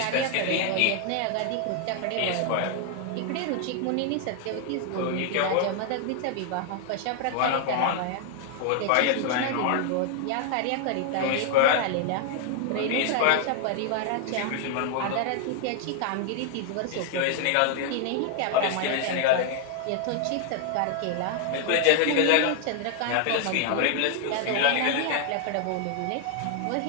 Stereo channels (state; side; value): different; both; correlation 0.00